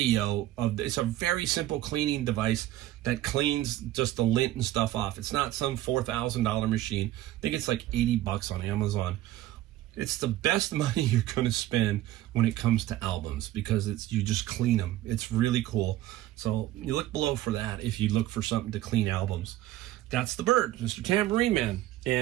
It's a very simple cleaning device that cleans just the lint and stuff off. It's not some $4,000 machine. I think it's like 80 bucks on Amazon. It's the best money you're going to spend when it comes to albums, because you just clean them. It's really cool. So you look below for that if you look for something to clean albums. That's the bird, Mr. Tambourine Man.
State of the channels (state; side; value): quieter; left; 14.8 dB